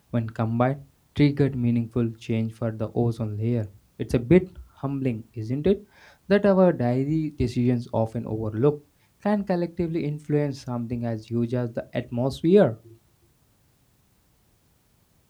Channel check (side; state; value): both; identical; correlation 1.00